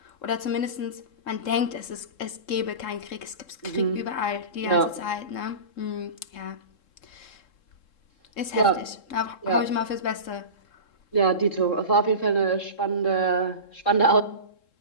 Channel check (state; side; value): late; right; 3.7 ms